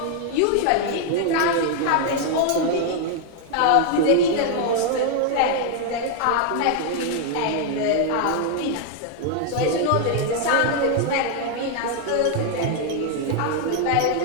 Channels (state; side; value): different; both; correlation 0.00